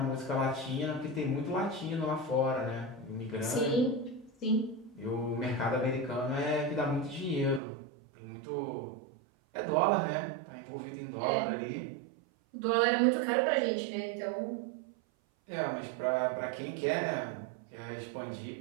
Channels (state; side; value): drops out; left; at 7.6 s